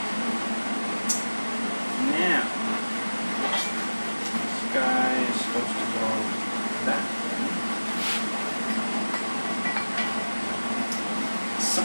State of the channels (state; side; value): inverted; both; correlation -1.00